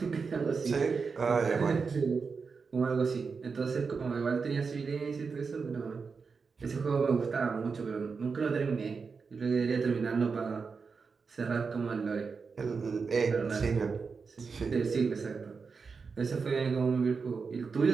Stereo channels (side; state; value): left; quieter; 5.1 dB